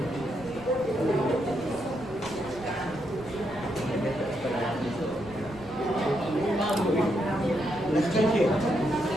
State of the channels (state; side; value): noise; right; rumble, 18 dB below the sound